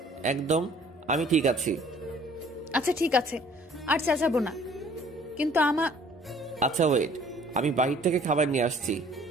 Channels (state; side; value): normal; both; correlation 0.55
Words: একদম আমি ঠিক আছি। আচ্ছা ঠিক আছে, আর চেঁচাবো না। কিন্তু আচ্ছা ওয়েট, আমি বাহির থেকে খাবার নিয়ে আসছি।